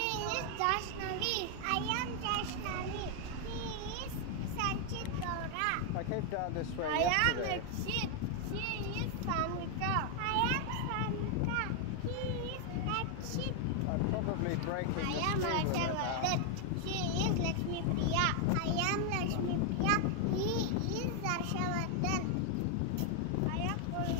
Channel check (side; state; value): both; different; correlation 0.00